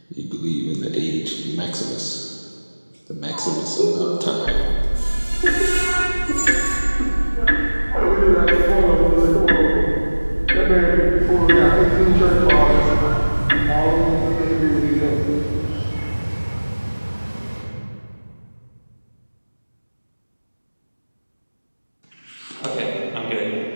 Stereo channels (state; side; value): inverted; both; correlation -1.00